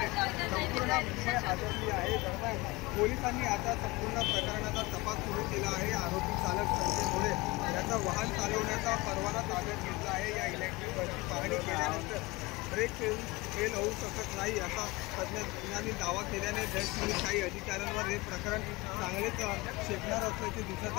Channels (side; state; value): right; quieter; 22.4 dB